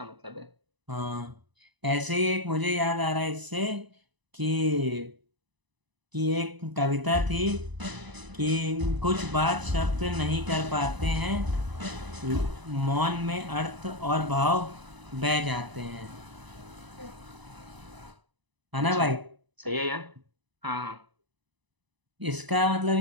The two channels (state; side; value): late; left; 1.0 ms